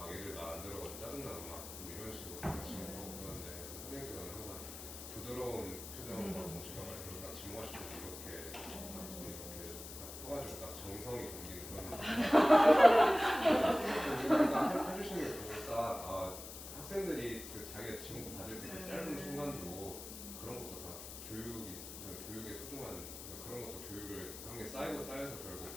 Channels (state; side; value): noise; left; hiss, 11 dB below the sound